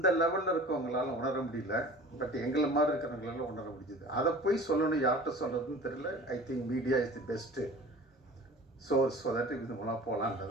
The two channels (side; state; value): both; normal; correlation 0.42